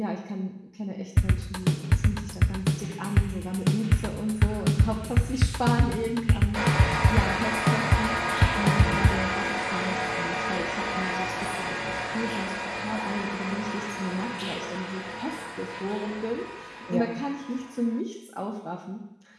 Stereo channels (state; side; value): identical; both; correlation 1.00